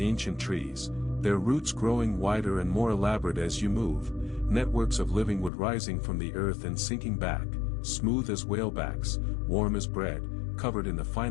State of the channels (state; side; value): drops out; right; at 5.5 s